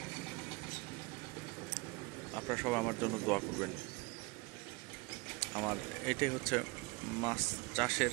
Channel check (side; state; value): left; quieter; 26.0 dB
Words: আপনারা সবাই আমার জন্য দোয়া করবেন। আমার এটাই হচ্ছে মাছ